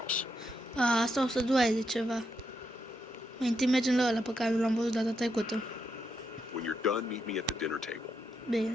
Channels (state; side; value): normal; both; correlation 0.81